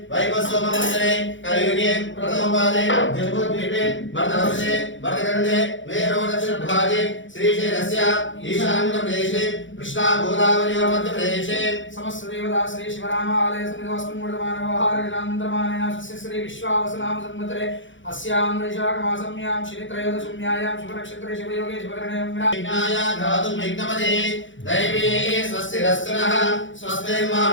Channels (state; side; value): late; right; 0.56 ms